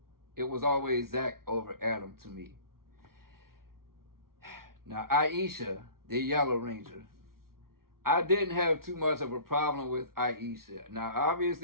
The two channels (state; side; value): late; left; 0.93 ms